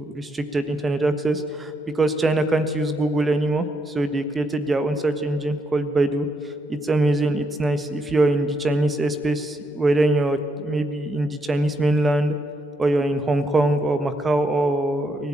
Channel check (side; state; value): both; normal; correlation 0.77